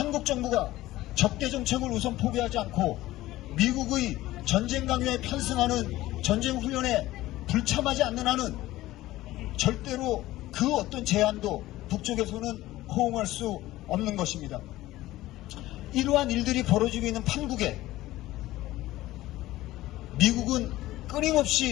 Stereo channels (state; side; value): quieter; right; 16.5 dB